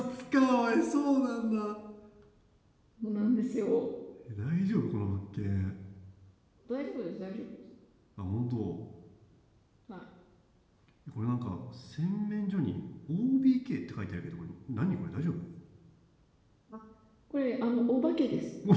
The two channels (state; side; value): identical; both; correlation 1.00